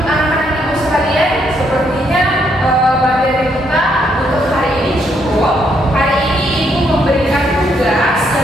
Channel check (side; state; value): both; normal; correlation 0.74